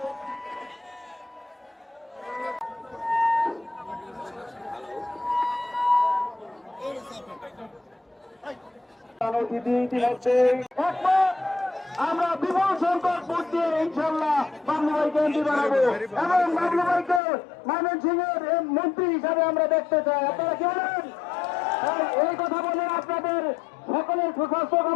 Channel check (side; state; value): right; drops out; at 17.2 s